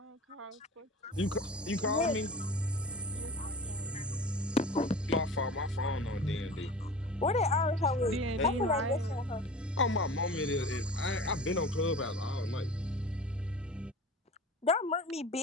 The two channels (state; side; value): normal; both; correlation 0.39